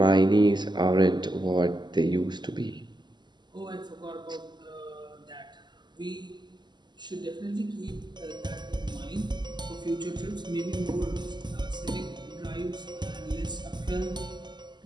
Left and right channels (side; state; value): left; late; 0.21 ms